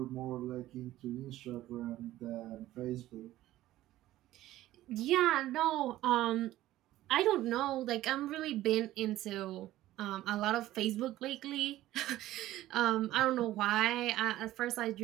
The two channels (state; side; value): quieter; left; 15.0 dB